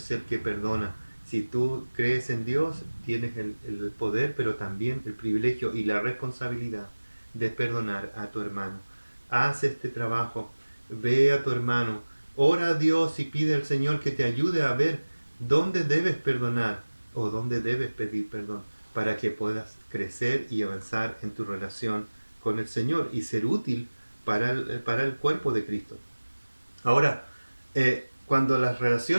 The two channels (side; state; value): both; inverted; correlation -1.00